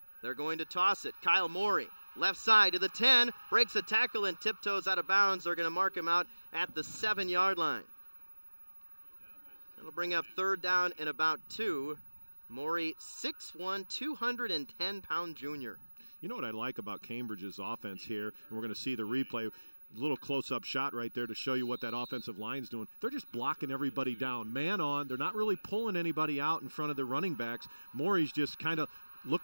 They're going to toss it. Kyle Morey, left side to the 10, breaks a tackle and tiptoes out of bounds. They're going to mark him out at the 7-yard line. That'll bring up 3rd down and about 2. Morey, 6'1", 210-pound junior. You know what I like about Cambridge's offense here, and we're going to see the replay, a little close-up shot right there to show you what that offensive line's doing. They're just blocking everybody down, man on. They're not really pulling anybody out in front of the running backs. Morey's just kind of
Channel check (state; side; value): inverted; both; correlation -1.00